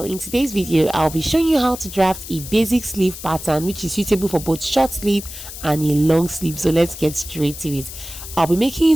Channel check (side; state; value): left; noise; hiss, 12 dB below the sound